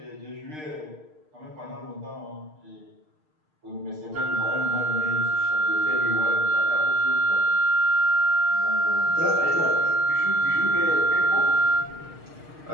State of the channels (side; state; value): left; late; 6.5 ms